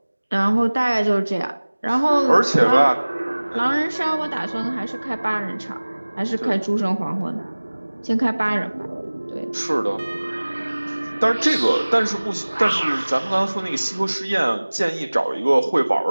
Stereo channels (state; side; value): inverted; both; correlation -1.00